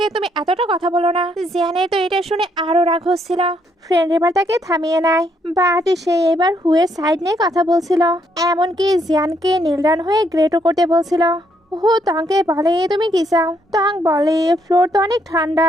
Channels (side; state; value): both; normal; correlation 0.72